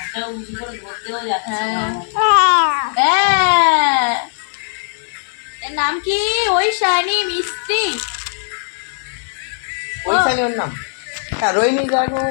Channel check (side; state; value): right; silent; digital silence